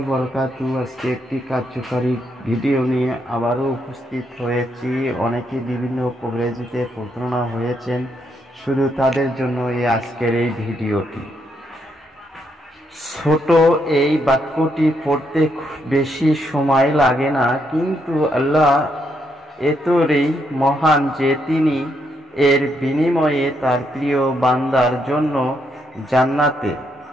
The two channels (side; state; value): both; normal; correlation 0.77